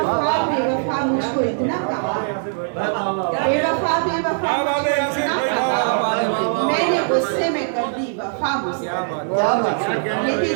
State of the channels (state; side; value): silent; left; digital silence